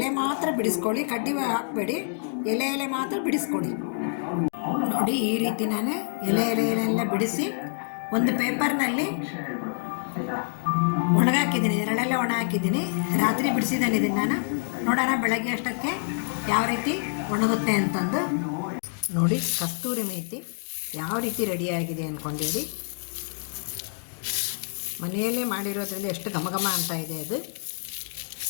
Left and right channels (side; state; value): right; silent; digital silence